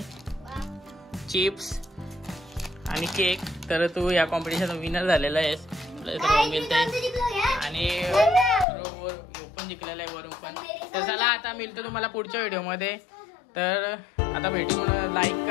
चिप्स आणि केक. तर तू या कॉम्पिटिशन विनर झालेला आहेस. मिळतंय आणि पण जिंकलेला आहे वरून पण. तर चला आता मिळतो तुम्हाला पुढच्या व्हिडिओमध्ये. तर आता भेटून लाईक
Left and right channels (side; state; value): right; drops out; at 8.7 s